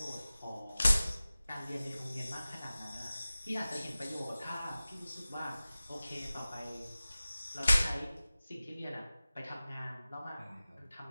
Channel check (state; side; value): inverted; both; correlation -0.97